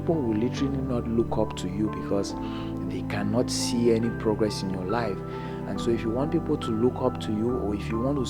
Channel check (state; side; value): identical; both; correlation 1.00